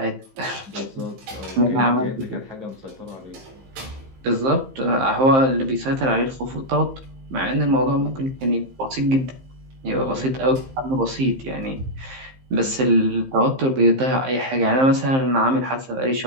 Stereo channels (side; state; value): left; late; 15 ms